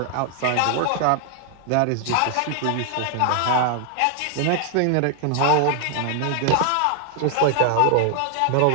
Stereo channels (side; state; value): both; different; correlation 0.00